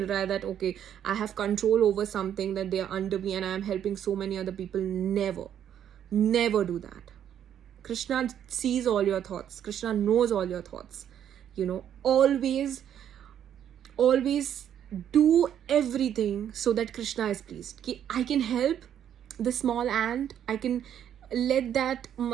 रहा है, that okay I have control over something, that they are under me and I am helping so many other people. Never do that. Krishna sees all your thoughts. Krishna knows all your thoughts. Always do everything so that Krishna is pleased. Ki I can help the small ant, I can let that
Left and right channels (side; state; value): left; quieter; 9.8 dB